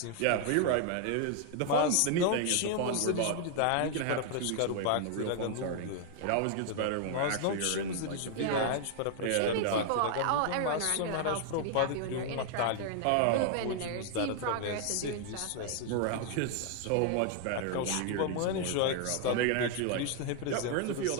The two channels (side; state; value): both; different; correlation 0.00